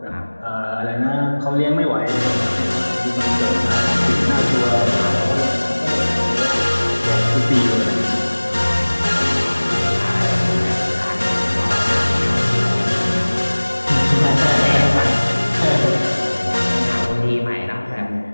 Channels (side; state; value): both; inverted; correlation -1.00